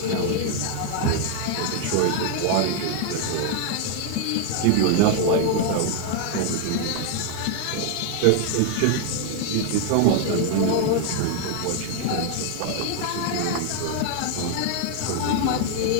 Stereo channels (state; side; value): different; both; correlation 0.00